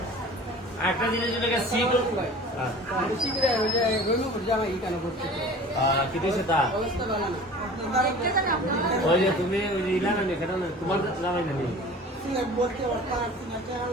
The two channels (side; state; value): both; normal; correlation 0.42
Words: একটা জিনিস যেটাকে সিট ওই যে তুমি ওই যে ইলা না কেন তোমার জামাই না